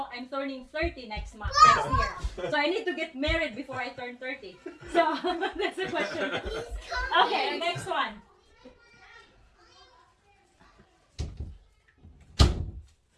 I'm turning 30 next year. So I need to get married before I turn 30. So that's the question. Okay, next one.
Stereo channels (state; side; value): identical; both; correlation 1.00